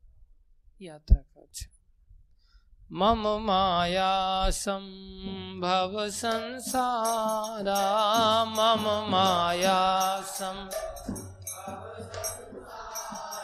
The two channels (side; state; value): both; identical; correlation 1.00